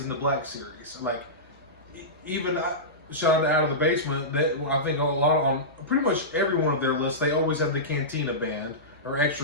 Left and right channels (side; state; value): both; normal; correlation -0.16